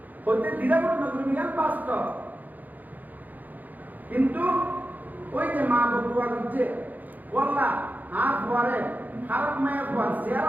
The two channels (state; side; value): late; left; 0.083 ms